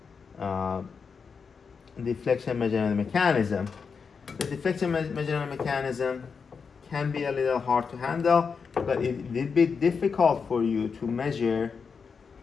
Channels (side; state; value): right; quieter; 5.6 dB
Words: deflection measurement mechanism. The deflection measurement mechanism can be a little hard to handle, but it will be difficult for you to measure